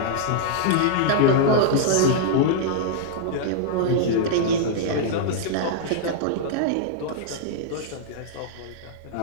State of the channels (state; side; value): different; both; correlation -0.02